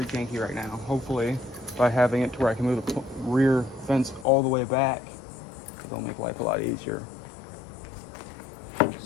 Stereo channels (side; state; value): right; drops out; at 4.2 s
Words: janky right now. Hopefully, by having it to where I can move the rear fence all the way back, it'll make life a lot easier.